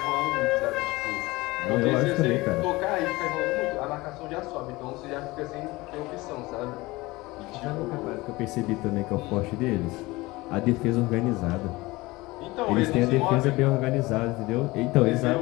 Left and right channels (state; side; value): quieter; right; 21.3 dB